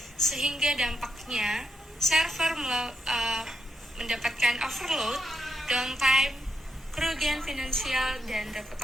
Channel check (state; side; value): normal; both; correlation 0.83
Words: sehingga dampaknya server mendapatkan overload, downtime, kerugian finansial, dan